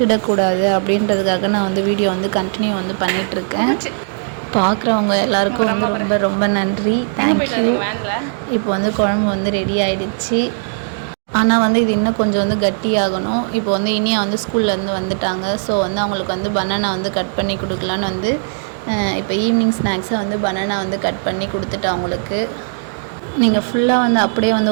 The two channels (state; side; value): silent; left; digital silence